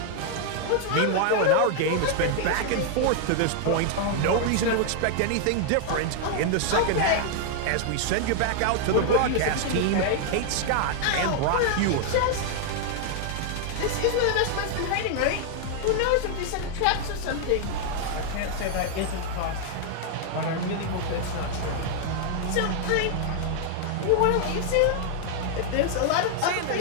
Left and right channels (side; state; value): both; different; correlation 0.00